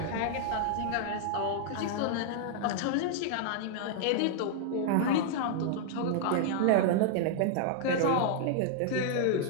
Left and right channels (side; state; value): both; different; correlation -0.01